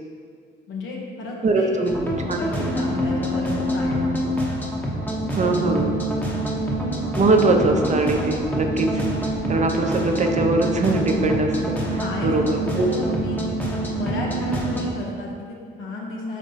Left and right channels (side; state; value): both; normal; correlation 0.52